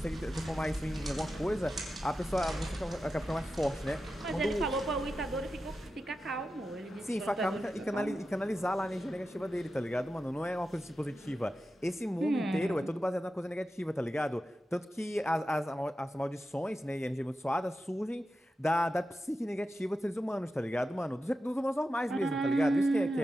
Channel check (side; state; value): both; normal; correlation 0.91